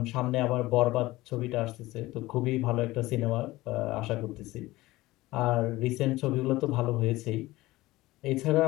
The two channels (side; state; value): right; quieter; 18.6 dB